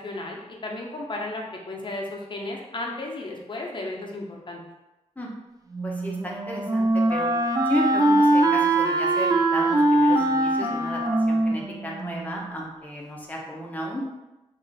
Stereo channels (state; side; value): normal; both; correlation 0.66